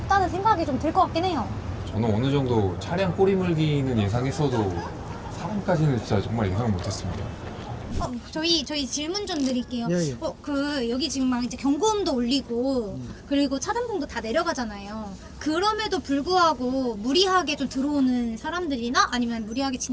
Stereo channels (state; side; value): identical; both; correlation 1.00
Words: 생각이 좀 들 것 같긴 해요. 저는 어느 정도 차량 꼬리 물기는 예상했어도 사람까지는 진짜 정말 예상을 못했습니다. 저희 질문 좀 드릴게요. 예. 여기 지금 막 이제 경고음도 울리고 그리고 차단봉도 다 내려가잖아요. 그럼에도 불구하고 무리하게 좀 들어오는 사람들이나 아니면 무리하게